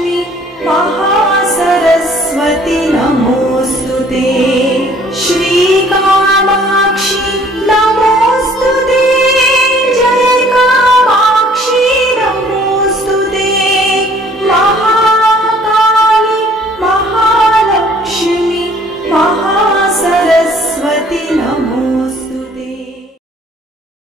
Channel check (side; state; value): both; normal; correlation 0.57